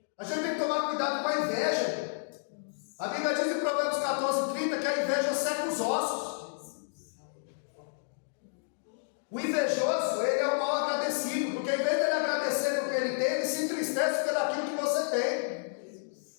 A gente tem que tomar cuidado com a inveja. A Bíblia diz em Provérbios 14:30 que a inveja seca os ossos. O invejoso, ele é o mal agradecido, porque em vez de ele agradecer pelo que ele tem, ele se entristece pelo aquilo que você tem.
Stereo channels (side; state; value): right; silent; digital silence